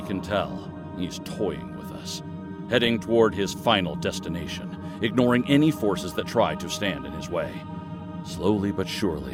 can tell, he's toying with us, heading toward his final destination, ignoring any forces that try to stand in his way. Slowly but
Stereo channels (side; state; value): both; identical; correlation 1.00